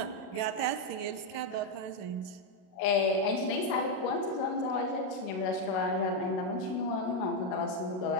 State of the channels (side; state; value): right; late; 32 ms